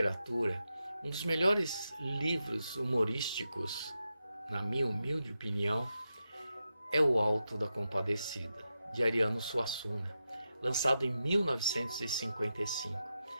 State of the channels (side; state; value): both; inverted; correlation -0.88